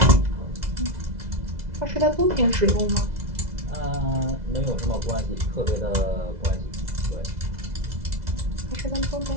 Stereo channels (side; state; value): left; late; 2.0 ms